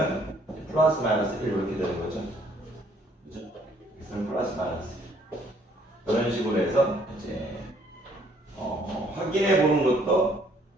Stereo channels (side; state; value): both; normal; correlation 0.63